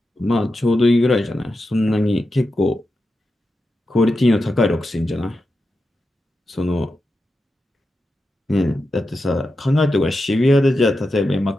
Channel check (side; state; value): both; normal; correlation 0.89